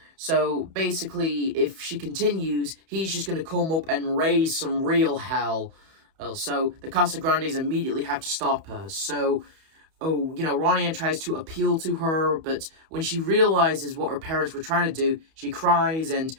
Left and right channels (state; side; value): late; left; 31 ms